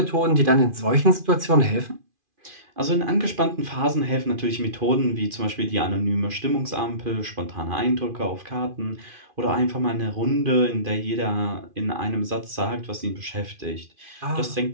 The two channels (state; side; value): late; left; 2.5 ms